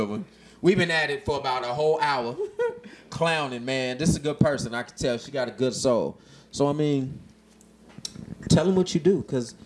one. We've been at it for about a whole hour. Clowning, man. This is a good person. I can tell she got a good soul. So, I mean, tell them what you do, because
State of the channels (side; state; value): both; identical; correlation 1.00